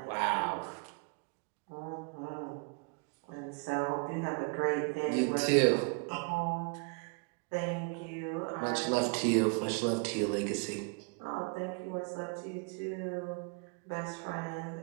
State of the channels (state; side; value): quieter; left; 34.2 dB